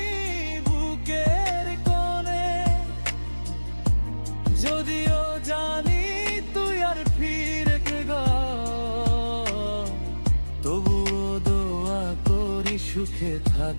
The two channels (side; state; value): both; inverted; correlation -1.00